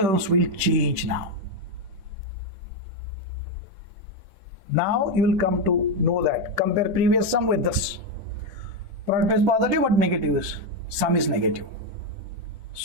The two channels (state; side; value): late; left; 10 ms